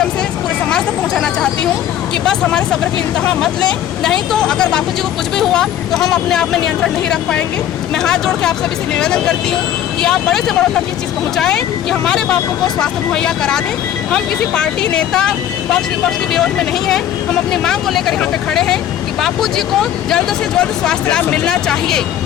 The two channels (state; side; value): quieter; right; 11.0 dB